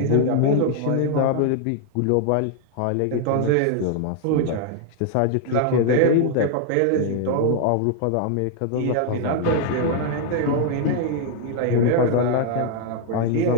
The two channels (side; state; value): both; different; correlation 0.00